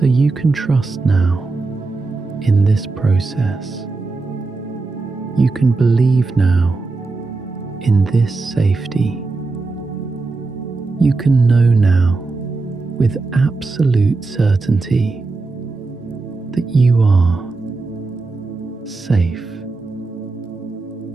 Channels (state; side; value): quieter; left; 3.7 dB